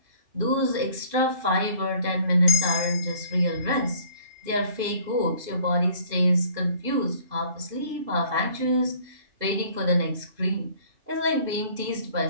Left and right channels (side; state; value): left; late; 2.5 ms